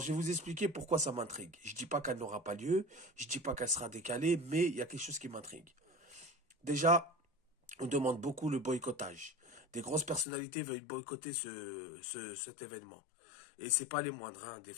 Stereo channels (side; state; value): right; drops out; at 10.2 s